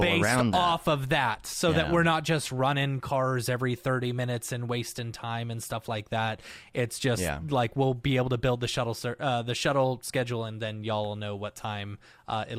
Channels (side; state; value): both; identical; correlation 1.00